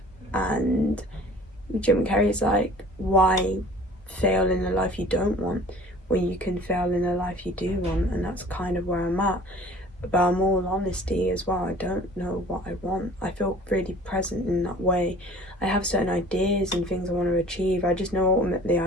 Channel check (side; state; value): both; normal; correlation 0.48